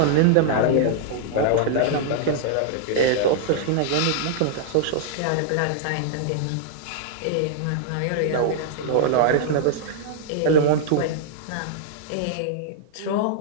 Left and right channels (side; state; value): both; different; correlation -0.01